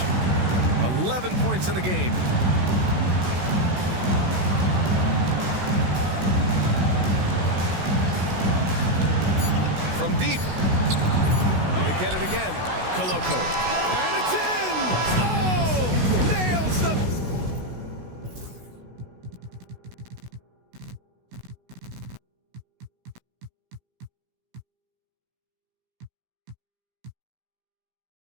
11 points in the game. From deep, get it again. Coloco. And it's in! Oh! Nails the...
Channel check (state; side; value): late; left; 16 ms